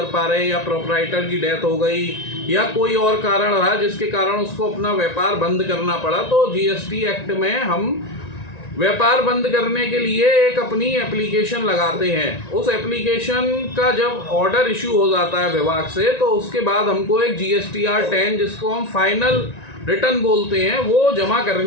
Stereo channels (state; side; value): late; right; 1.9 ms